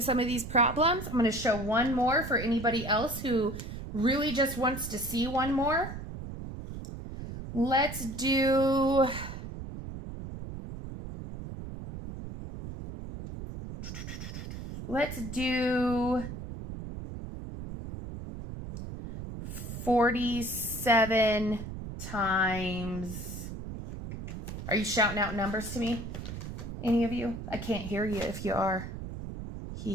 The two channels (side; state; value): right; noise; rumble, 8 dB below the sound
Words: some of these problems. I'm going to show one more for anybody else who really just wants to see one more. Let's do 47 times, are you shouting out numbers to me? Any of you? I can't hear you if you are. Hee